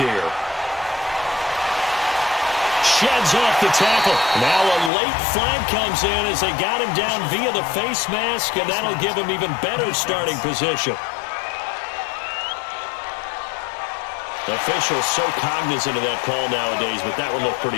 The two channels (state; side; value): drops out; right; at 4.9 s